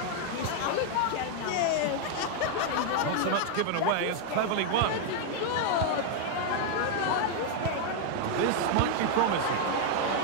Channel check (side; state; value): both; different; correlation 0.00